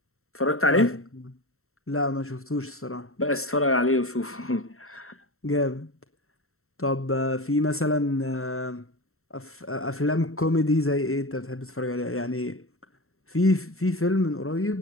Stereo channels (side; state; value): right; late; 0.63 ms